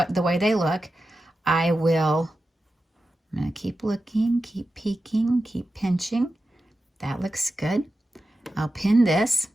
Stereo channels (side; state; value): both; normal; correlation 0.92